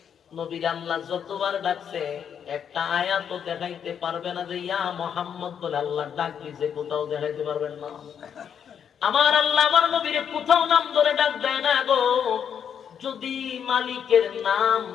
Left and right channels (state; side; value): quieter; right; 8.1 dB